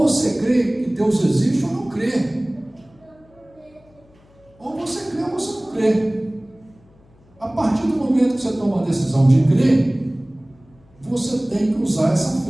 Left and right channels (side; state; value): left; noise; hum, 29 dB below the sound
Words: crê que Deus existe ou não crê, ou você crê ou você não crê. A partir do momento que você toma a decisão de crer, você tem que usar essa